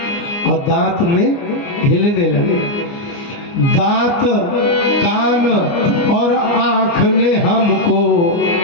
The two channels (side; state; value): right; late; 29 ms